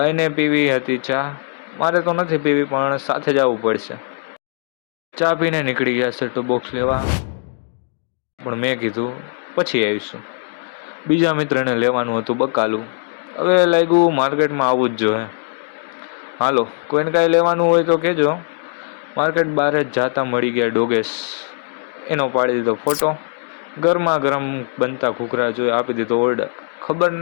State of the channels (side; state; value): right; silent; 61 dB below the other